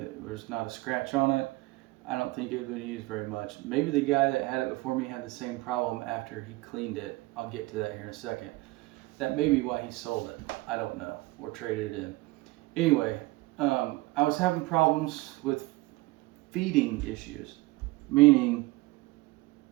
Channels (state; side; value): quieter; left; 21.0 dB